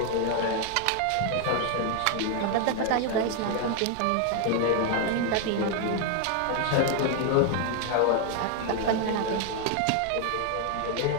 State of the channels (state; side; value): different; both; correlation 0.01